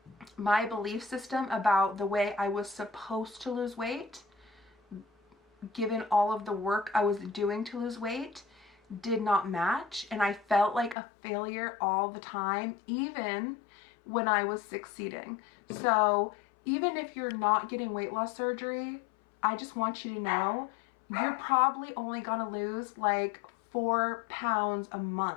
my belief system about the way I was supposed to lose weight, given all of the work I was doing to lose weight, did not match. And I felt like a failure all the time, even when I was succeeding. So even if you're not getting weight loss surgery, I just want you to know you're probably only gonna lose like 4 pounds a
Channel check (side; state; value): right; drops out; at 11.0 s